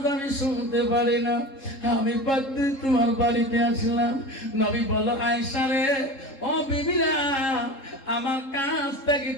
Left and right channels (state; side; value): late; right; 3.7 ms